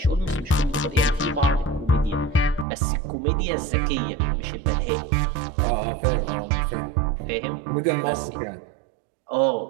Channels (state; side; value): drops out; left; at 2.7 s